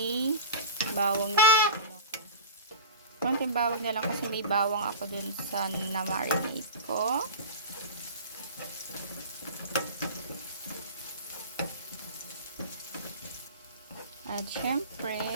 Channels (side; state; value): both; inverted; correlation -0.31